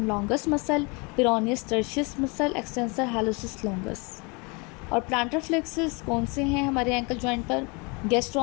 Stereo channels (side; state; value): right; quieter; 29.9 dB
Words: longus muscle, peroneus tertius muscle, extensor hallucis longus. और प्लांटर फ्लेक्सेस कौन से हैं हमारे एंकल जॉइंट पर,